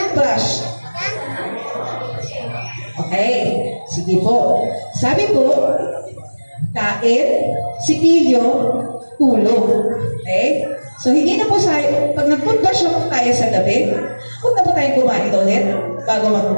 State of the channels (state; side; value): inverted; both; correlation -1.00